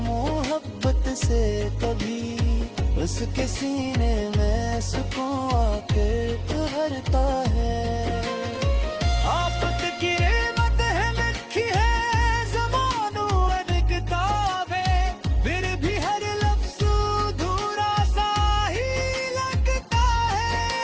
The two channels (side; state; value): both; identical; correlation 1.00